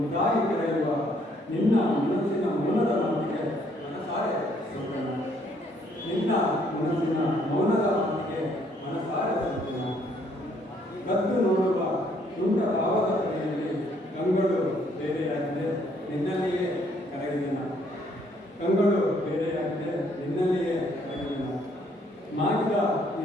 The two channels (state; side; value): normal; both; correlation 0.66